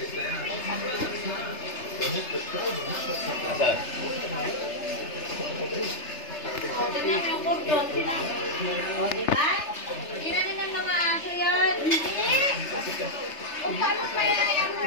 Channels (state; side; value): late; right; 3.3 ms